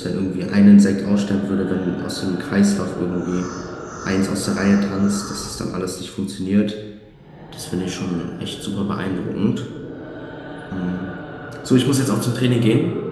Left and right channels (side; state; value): both; identical; correlation 1.00